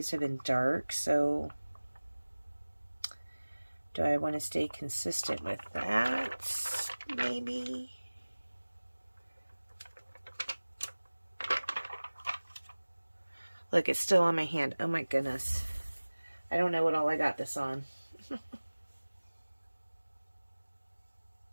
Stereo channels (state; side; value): inverted; both; correlation -1.00